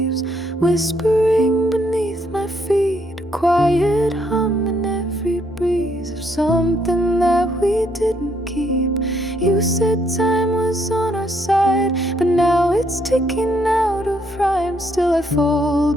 whispering beneath my feet, a quiet hum in every breeze of something that we didn't keep. You said time was on our side, but now it's ticking out of rhyme. Still I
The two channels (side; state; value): both; normal; correlation 0.71